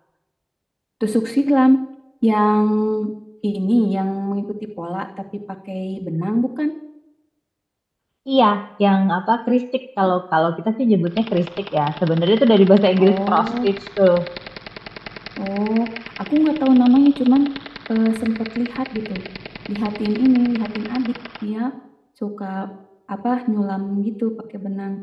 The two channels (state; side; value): identical; both; correlation 1.00